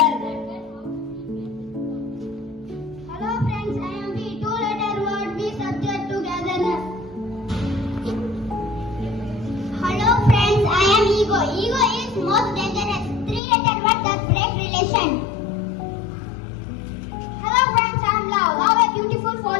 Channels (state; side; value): drops out; right; at 13.4 s